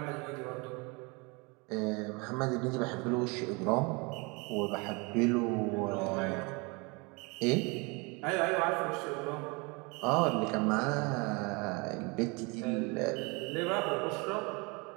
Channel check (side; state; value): left; quieter; 28.8 dB